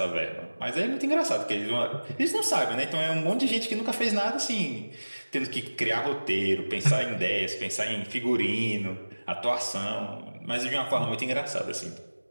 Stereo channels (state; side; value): inverted; both; correlation -1.00